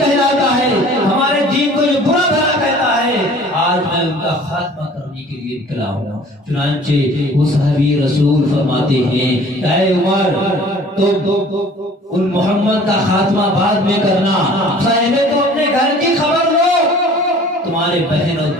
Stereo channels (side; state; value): both; normal; correlation 0.50